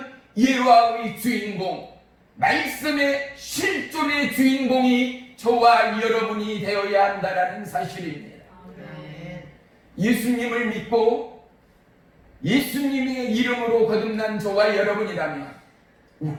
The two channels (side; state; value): both; identical; correlation 1.00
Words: 예화의 주인공, 말씀의 실존의 주인공이 저와 여러분이 되어야 한다는 사실입니다. 아멘. 예수님을 믿고 예수님의 이름으로 거듭난 저와 여러분이라면